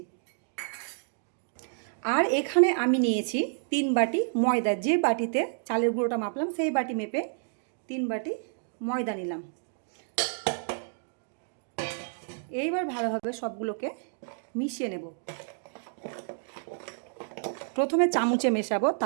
আর এখানে আমি নিয়েছি 3 বাটি ময়দা। যে বাটিতে চালের গুঁড়োটা মাপলাম সেই বাটি মেপে 3 বাটি ময়দা নিলাম। এইবার ভালোভাবে সবগুলোকে মিশিয়ে নেব। প্রথমে চামচে মেশাবো,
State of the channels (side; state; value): left; silent; digital silence